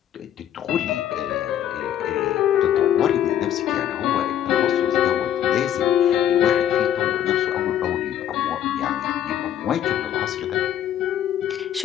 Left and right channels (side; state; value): right; quieter; 10.6 dB